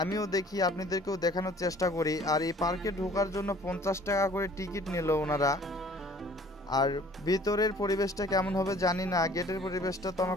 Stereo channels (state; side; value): normal; both; correlation 0.53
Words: আমিও দেখি, আপনাদেরকেও দেখানোর চেষ্টা করি। আর এই পার্কে ঢোকার জন্য 50 টাকা করে টিকিট নিল ওনারা। আর ভিতরের পরিবেশটা কেমন হবে জানি না, গেটের পরিবেশটা তো